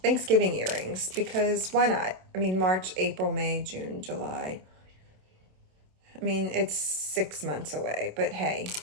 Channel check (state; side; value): late; left; 27 ms